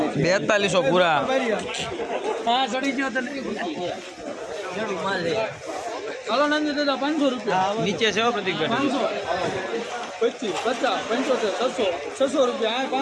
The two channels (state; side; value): identical; both; correlation 1.00